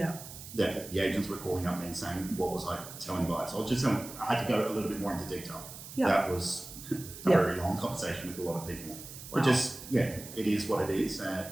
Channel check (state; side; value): noise; right; hiss, 13 dB below the sound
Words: The agents were calling up me and saying, what was I telling buyers? I was just telling, I had to go a little bit more into detail. Yeah. That was a very long conversation with a lot of people. Wow. But just, it is what it is.